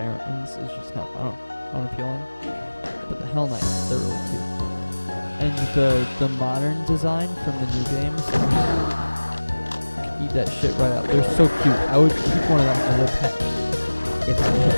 is just kind of unappealing. But the Hell Knights, they're really cute. And the modern design from the new games, could eat that shit right up. They're so cute. I would keep one of them as a pet if I could.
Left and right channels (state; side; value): inverted; both; correlation -1.00